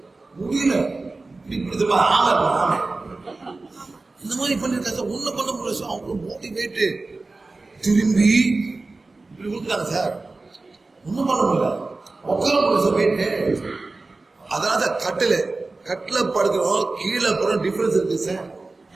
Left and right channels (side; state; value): left; quieter; 3.4 dB